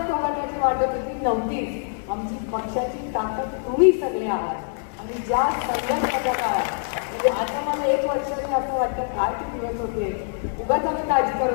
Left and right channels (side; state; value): right; silent; digital silence